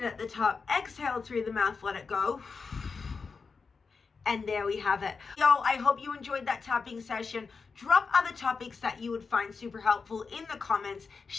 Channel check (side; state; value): right; quieter; 4.9 dB